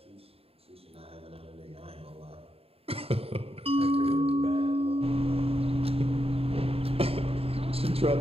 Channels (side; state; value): left; late; 0.28 ms